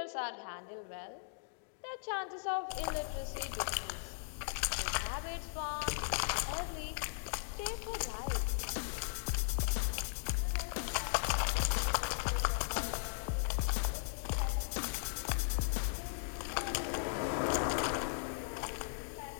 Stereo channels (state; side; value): silent; right; digital silence